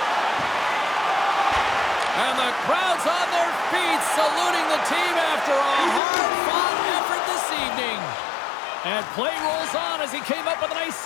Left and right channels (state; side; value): drops out; right; at 6.0 s